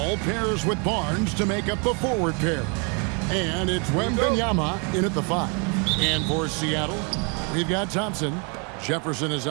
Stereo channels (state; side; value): quieter; left; 35.1 dB